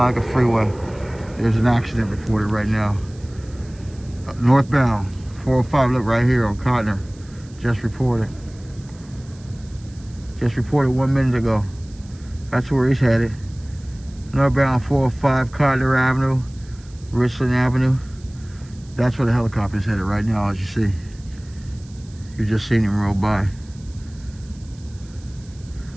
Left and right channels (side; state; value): right; noise; hiss, 26 dB below the sound